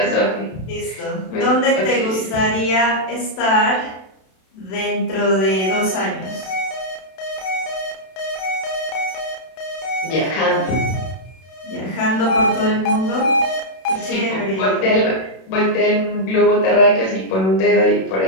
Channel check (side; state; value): right; late; 32 ms